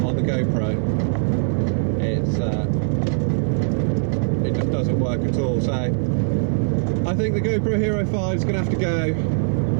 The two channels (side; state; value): left; silent; digital silence